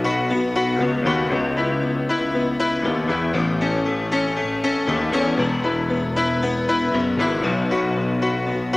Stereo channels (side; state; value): right; noise; hum, 26 dB below the sound